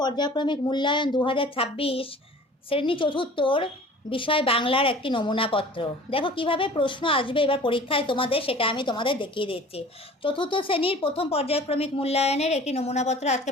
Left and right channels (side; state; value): both; normal; correlation 0.45